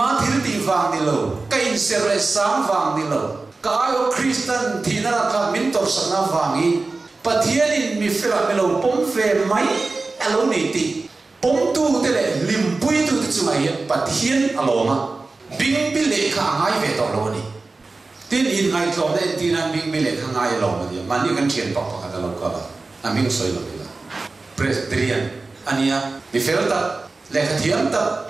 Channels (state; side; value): quieter; left; 3.6 dB